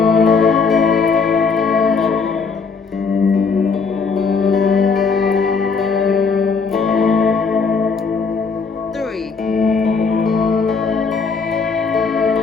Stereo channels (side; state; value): right; quieter; 5.0 dB